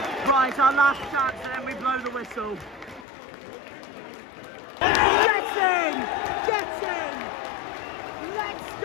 Right, our last chance, and then we blow the whistle. Get in! Get in! Let's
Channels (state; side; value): drops out; right; at 3.1 s